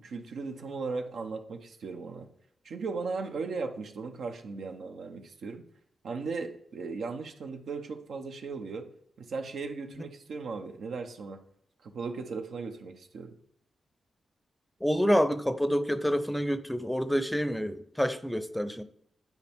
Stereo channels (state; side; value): normal; both; correlation 0.93